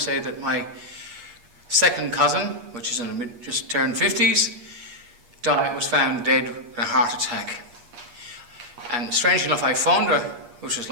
that my second cousin, which is just turned 50s, was found dead in a heart attack. And strangely enough, I phoned her, which was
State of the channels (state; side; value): late; left; 8.4 ms